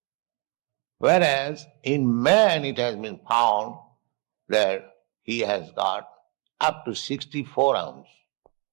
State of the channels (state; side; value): quieter; left; 32.3 dB